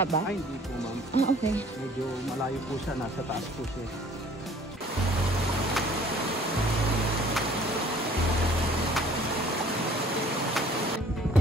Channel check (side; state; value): both; normal; correlation 0.53